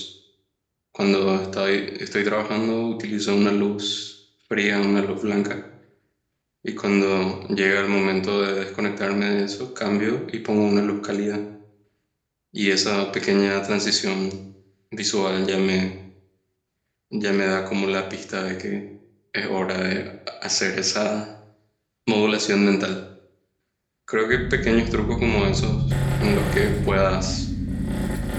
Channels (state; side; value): identical; both; correlation 1.00